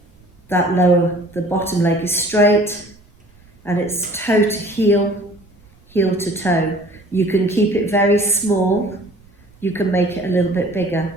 the bottom leg is straight and it's toe to heel, heel to toe. You can keep it very small, you can make it a little bit bigger.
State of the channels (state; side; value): noise; right; rumble, 30 dB below the sound